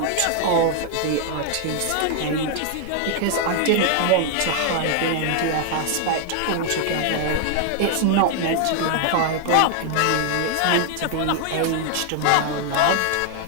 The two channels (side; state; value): both; different; correlation 0.00